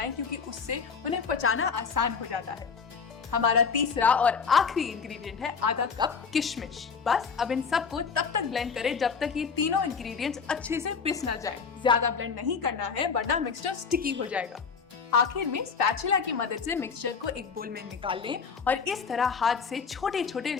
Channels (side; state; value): right; quieter; 5.7 dB